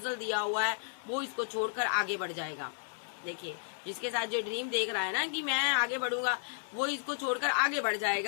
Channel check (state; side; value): silent; right; 56 dB below the other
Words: दिया हुआ है वो इसको छोड़कर आगे बढ़ जाएगा। देखिए जिसके साथ जो ड्रीम देख रहा है ना कि मैं आगे बढ़ूंगा, वो इसको छोड़कर आगे बढ़